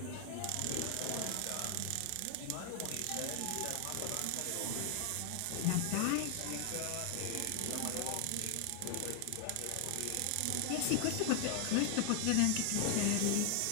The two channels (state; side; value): different; both; correlation 0.00